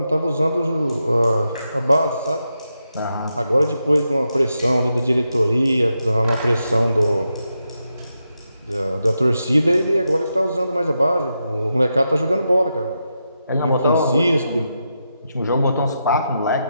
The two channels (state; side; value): inverted; both; correlation -0.86